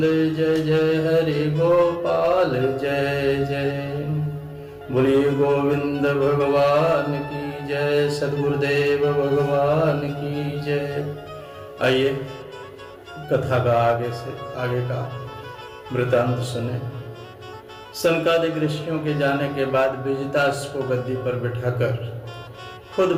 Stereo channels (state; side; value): identical; both; correlation 1.00